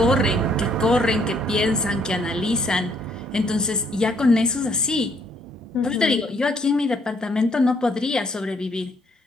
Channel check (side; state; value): both; normal; correlation 0.68